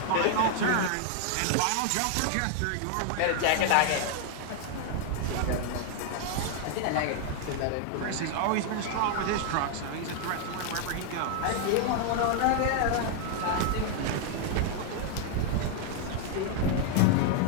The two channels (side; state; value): both; different; correlation 0.00